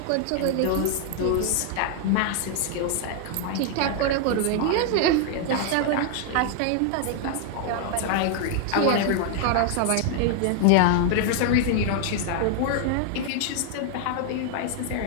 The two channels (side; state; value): both; different; correlation 0.00